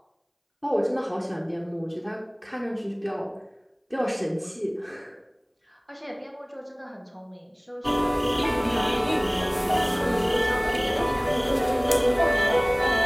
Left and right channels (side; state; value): both; identical; correlation 1.00